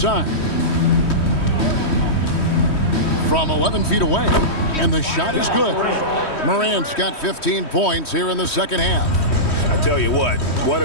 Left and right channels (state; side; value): late; right; 3.1 ms